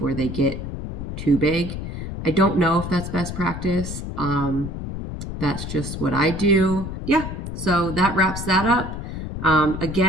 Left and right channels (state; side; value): noise; left; rumble, 6 dB below the sound